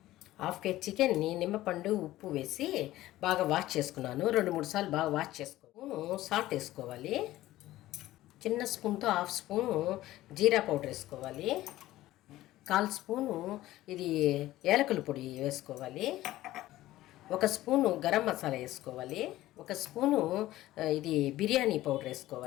చికెన్ని నిమ్మపండు ఉప్పు వేసి బాగా వాష్ చేసుకున్నాను. 2-3 సార్లు బాగా వాష్ చేసుకోను. సాల్ట్ వేసుకోవాలి. చిన్న స్పూన్తో హాఫ్ స్పూను జీరా పౌడర్ వేసుకోవాలి. 1/4 స్పూను ఇది ఏలకుల పొడి వేసుకోవాలి. 1 స్పూను గరం మసాలా వేసుకోవాలి. 1 స్పూను ఇది బిర్యానీ పౌడర్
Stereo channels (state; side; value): quieter; right; 15.8 dB